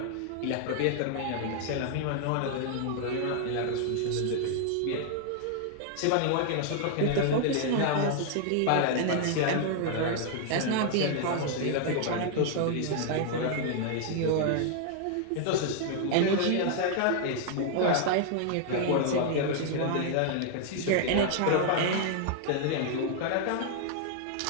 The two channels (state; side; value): different; both; correlation 0.00